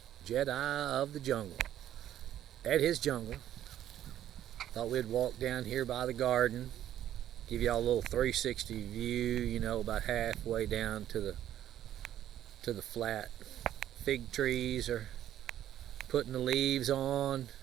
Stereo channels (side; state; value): left; quieter; 11.7 dB